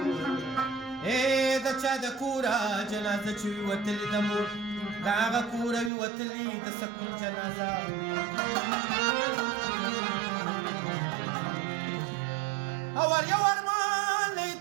د چا د کوره جنازه چې وي وتلې د مور د هغه کوره وي وتلې د سکون جنازه او ور یو ارمان نه یې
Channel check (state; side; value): drops out; left; at 5.9 s